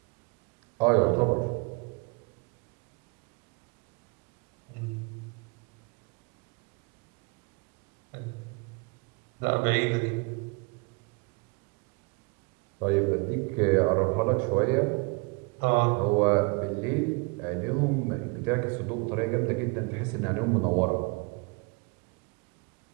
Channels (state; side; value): quieter; left; 31.1 dB